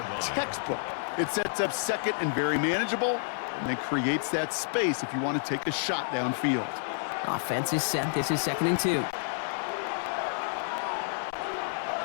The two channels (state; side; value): silent; right; digital silence